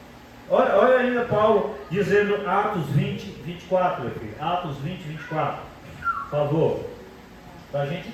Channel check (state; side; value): identical; both; correlation 1.00